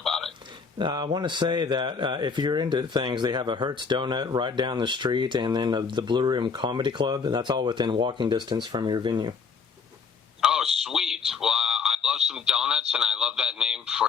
it. I want to say that if you're into things, they have a Hertz Donut right down the street, and then the Blue Room Comedy Club, and that's all within walking distance from your venue. Oh, sweet. Well, I love some donuts, and I love that name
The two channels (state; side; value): quieter; right; 5.6 dB